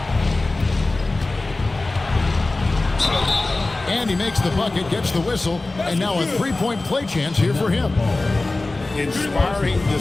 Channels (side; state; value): right; quieter; 3.1 dB